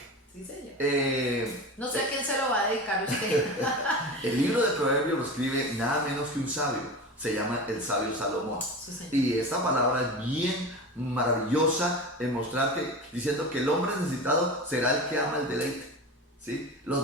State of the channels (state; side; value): normal; both; correlation 0.29